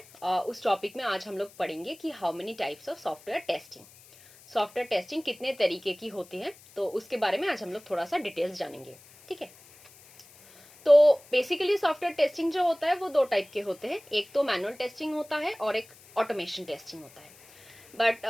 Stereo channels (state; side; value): noise; left; hiss, 23 dB below the sound